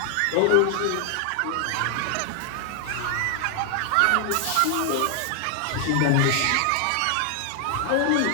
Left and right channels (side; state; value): both; different; correlation 0.00